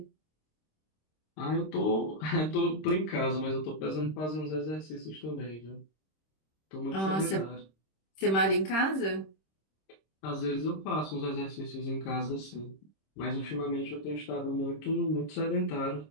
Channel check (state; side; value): late; right; 26 ms